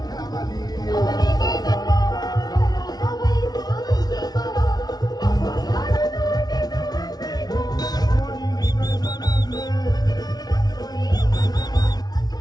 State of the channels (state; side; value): late; right; 0.19 ms